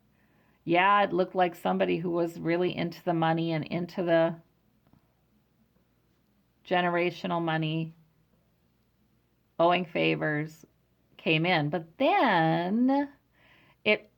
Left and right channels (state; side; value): identical; both; correlation 1.00